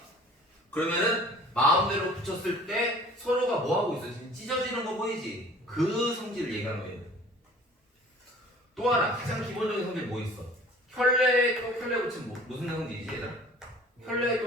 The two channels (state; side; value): normal; both; correlation 0.49